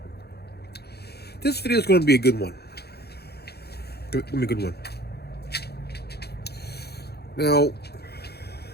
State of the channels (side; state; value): right; late; 0.47 ms